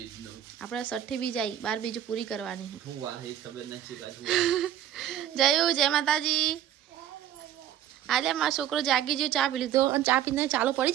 નું આપણે 6ઠી બીજ આવી, 12 બીજ પૂરી કરવાની છે। હું વાર હે ખબર નથી કાજુ જય માતાજી। આજે મારો છોકરો જાગી ગયો, ચા પી લીધો અને ચા પીને ચાલુ પડી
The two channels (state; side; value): quieter; left; 11.1 dB